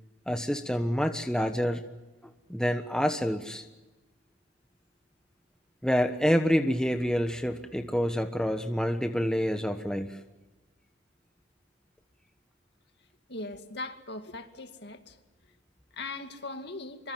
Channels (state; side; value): normal; both; correlation 0.90